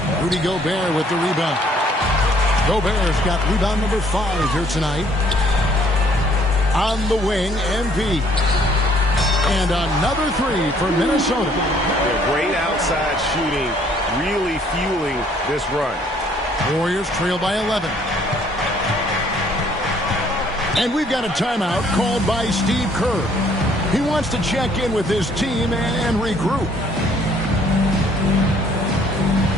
Rudy Gobert with the rebound. Gobert's got rebound number 5 here tonight. On the wing, MP. And another 3 for Minnesota. Great outside shooting, really fueling this run. Warriors trail by 11. And we've got a timeout called by Steve Kerr. He wants to check in with his team and regroup.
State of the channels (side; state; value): both; normal; correlation 0.62